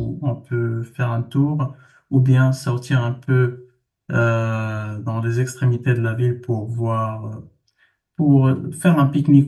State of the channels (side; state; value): both; identical; correlation 1.00